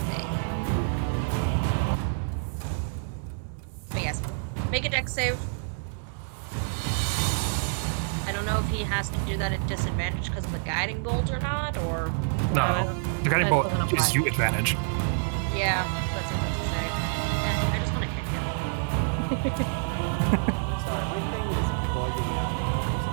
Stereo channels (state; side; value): silent; left; digital silence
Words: thing. But yes, make a dex save. I don't know if he has to do that at disadvantage because of the guiding bolt or not, or... No, the guiding That bolt doesn't gives apply. you advantage. Yeah, but since it's a save. I just want to hit him. Sorry, my thing is bugging out now for